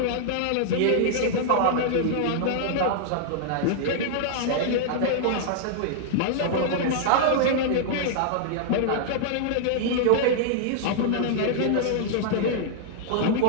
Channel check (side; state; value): both; different; correlation -0.01